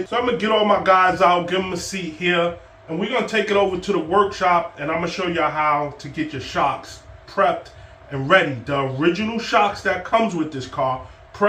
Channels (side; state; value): both; identical; correlation 1.00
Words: So I'm going to get all my guys out, give them a seat here, and we're going to take it over to the workshop, and I'm going to show y'all how to get your shocks prepped and ready. The original shocks that comes with this car,